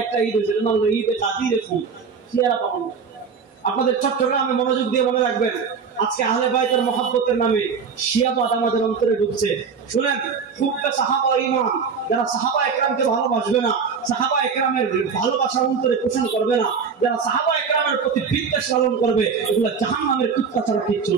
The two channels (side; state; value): left; quieter; 5.8 dB